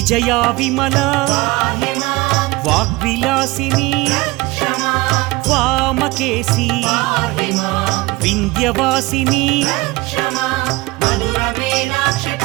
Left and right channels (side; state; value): left; quieter; 21.8 dB